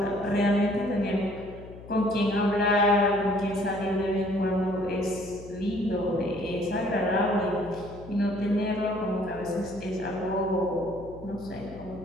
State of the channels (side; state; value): left; noise; hum, 16 dB below the sound